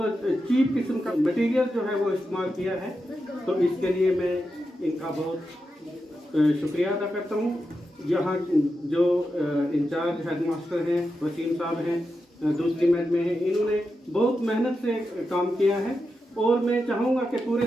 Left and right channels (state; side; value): normal; both; correlation 0.88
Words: चीप किस्म का मटेरियल जो है वो इस्तेमाल किया है। तो इसके लिए मैं इनका बहुत शुक्रिया अदा करता हूँ। यहाँ जो इंचार्ज हेडमास्टर हैं वसीम साहब हैं, दूसरी मैच में हैं, इन्होंने बहुत मेहनत से काम किया है, और मैं चाहूँगा कि पूरे